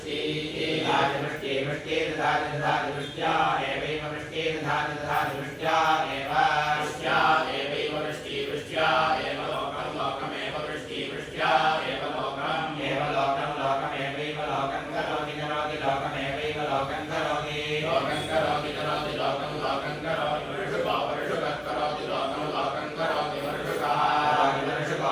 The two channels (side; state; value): both; identical; correlation 1.00